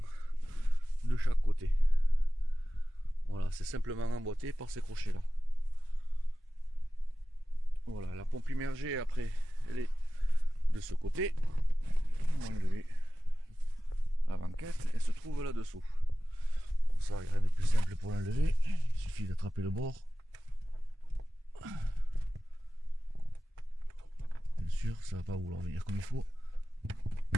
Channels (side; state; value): both; normal; correlation 0.95